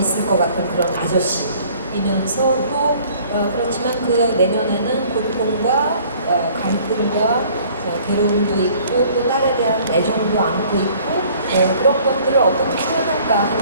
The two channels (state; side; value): inverted; both; correlation -0.55